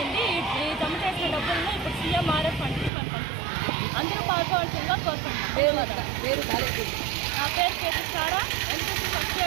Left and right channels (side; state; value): left; drops out; at 2.9 s